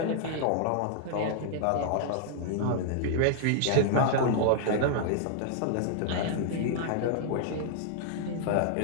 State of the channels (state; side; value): different; both; correlation -0.01